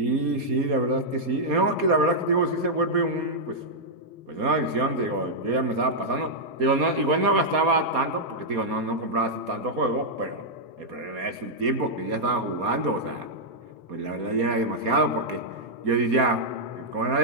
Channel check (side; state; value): left; late; 4.2 ms